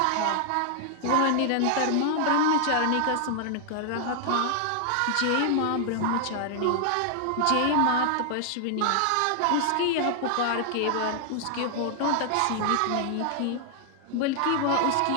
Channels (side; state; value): both; different; correlation 0.00